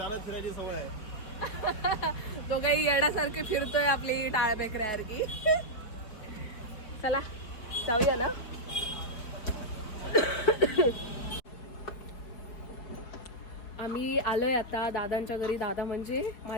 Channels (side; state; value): right; late; 4.6 ms